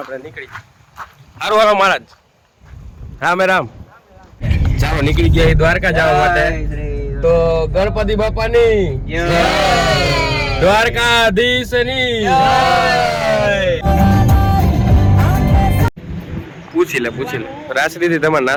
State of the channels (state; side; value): identical; both; correlation 1.00